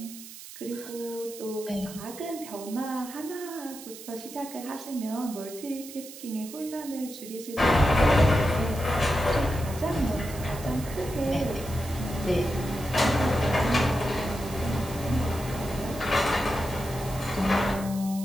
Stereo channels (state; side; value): noise; right; hiss, 14 dB below the sound